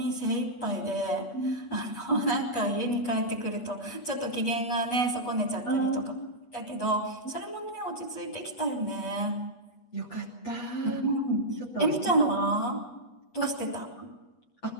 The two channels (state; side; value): late; right; 8.3 ms